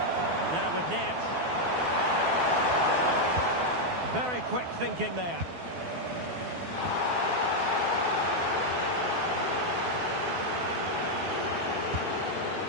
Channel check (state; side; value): late; left; 12 ms